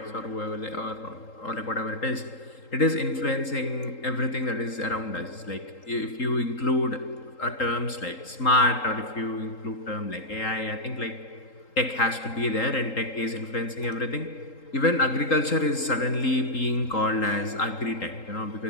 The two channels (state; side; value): late; right; 3.8 ms